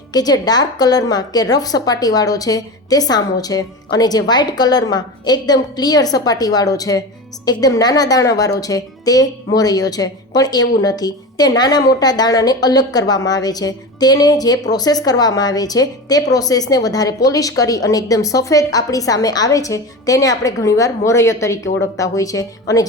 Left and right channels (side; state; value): both; normal; correlation 0.26